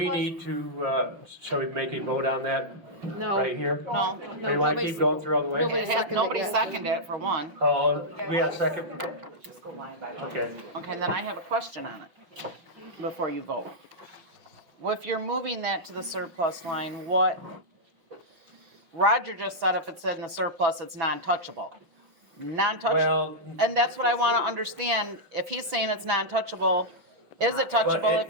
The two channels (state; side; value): late; left; 5.8 ms